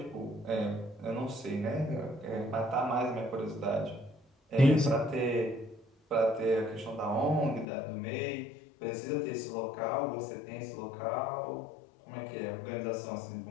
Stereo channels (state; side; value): drops out; right; at 7.7 s